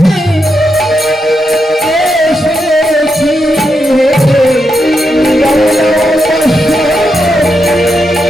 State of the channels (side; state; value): both; normal; correlation 0.84